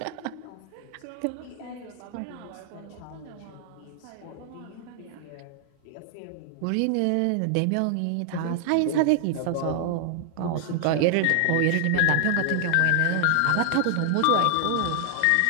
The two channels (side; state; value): both; different; correlation 0.00